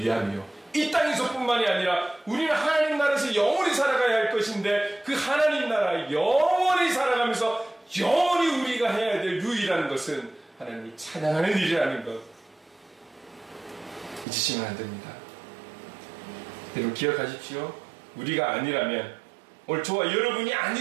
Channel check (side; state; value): left; drops out; at 14.2 s